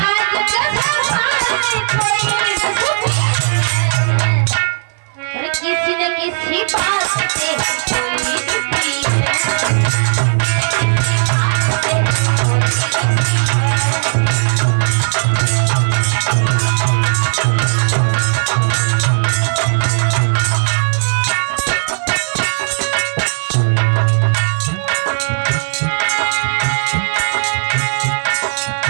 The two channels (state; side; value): silent; left; 56 dB below the other